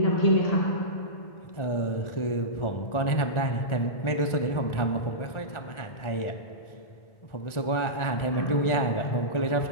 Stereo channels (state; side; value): late; right; 1.4 ms